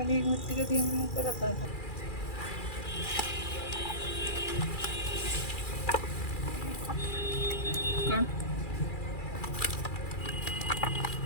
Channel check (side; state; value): right; late; 2.4 ms